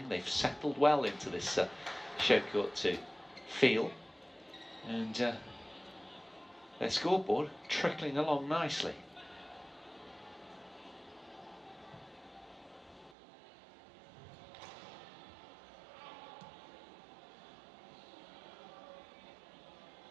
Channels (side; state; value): left; drops out; at 13.2 s